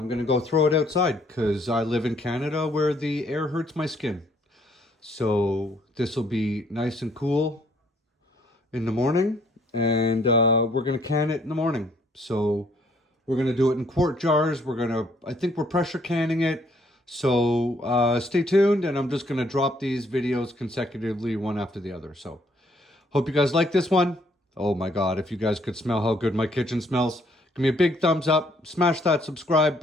going to go throw it outside because I live in Canada where the air hurts my skin. So this will be nice and cool in the morning. And we're going to can it in the morning. So we're going to do it in quart jars. I think we're pressure canning it. So stay tuned. And I'm just going to drop these videos consecutively one after the other. So hope you guys like this one. Oh my God, if you guys could smell how good my kitchen smells. Give me a big thumbs up, smash that subscribe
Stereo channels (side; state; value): both; normal; correlation 0.66